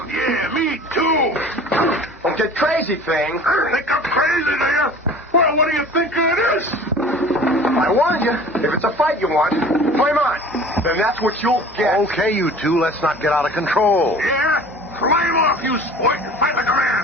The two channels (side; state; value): both; normal; correlation 0.44